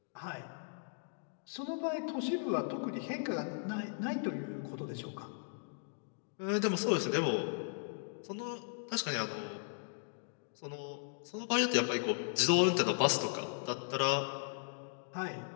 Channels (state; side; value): silent; right; digital silence